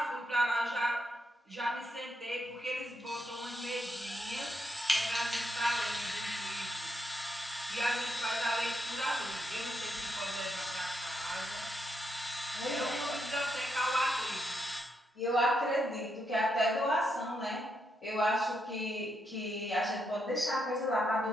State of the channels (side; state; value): both; normal; correlation 0.80